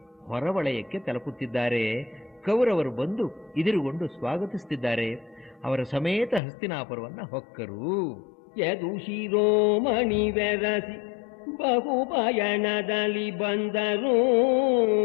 ಹೊರವಲಯಕ್ಕೆ ತಲುಪುತ್ತಿದ್ದಾರೆ. ಕೌರವರು ಬಂದು ಎದುರುಗೊಂಡು ಸ್ವಾಗತಿಸುತ್ತಿದ್ದಾರೆ. ಅವರ ಸಮೇತ ಹಸ್ತಿನಾಪುರವನ್ನ ಹೊಕ್ಕರು. ಯದು ಶಿರೋಮಣಿ ಬೆರಸಿ ಬಹುಪಯಣದಲ್ಲಿ ಬಂದರು.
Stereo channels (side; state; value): right; drops out; at 6.4 s